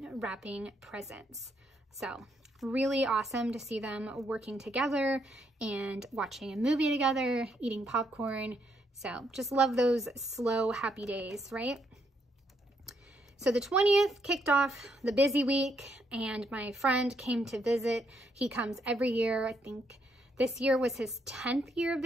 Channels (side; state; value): both; normal; correlation 0.75